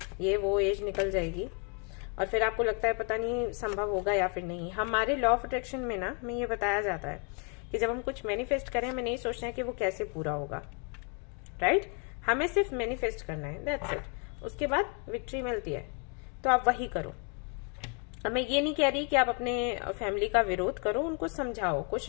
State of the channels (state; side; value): quieter; right; 37.7 dB